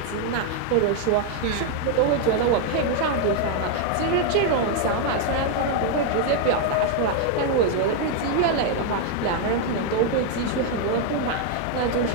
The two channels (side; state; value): both; different; correlation 0.00